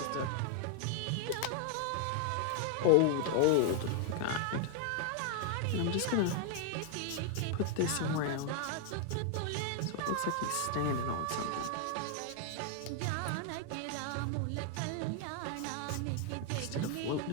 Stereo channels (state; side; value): different; both; correlation 0.00